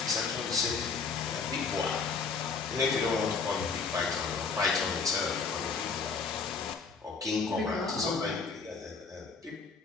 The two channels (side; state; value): right; quieter; 4.9 dB